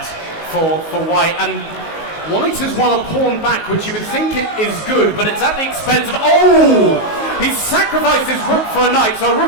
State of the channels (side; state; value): right; late; 19 ms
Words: for white, and white has won a pawn back, which you would think it is good, but it's at the expense of... He's sacrificed his rook for a knight, so a